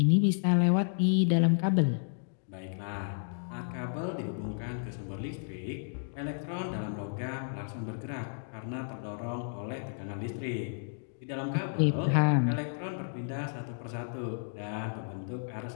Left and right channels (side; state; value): right; silent; digital silence